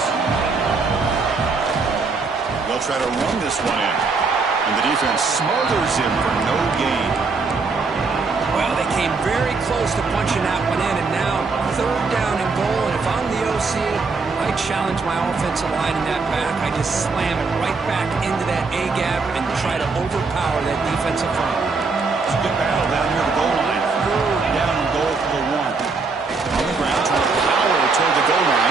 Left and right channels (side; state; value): left; quieter; 4.3 dB